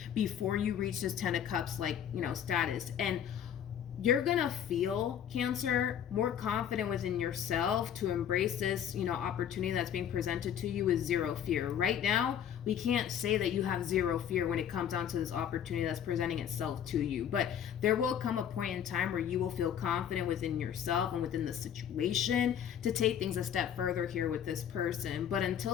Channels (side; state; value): right; quieter; 9.3 dB